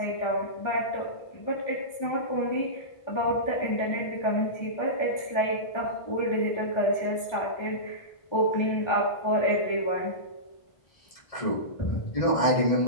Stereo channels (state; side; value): late; right; 1.3 ms